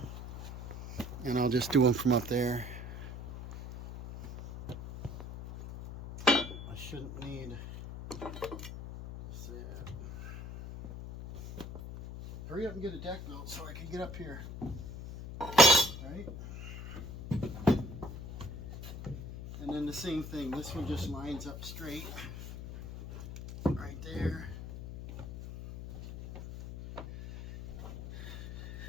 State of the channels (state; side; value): noise; left; hum, 10 dB below the sound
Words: and I'll just do them from up there. I shouldn't need. Hurry up and get a deck built so I can get up here. Right? And then the same thing. This one just lines up straight. Right there.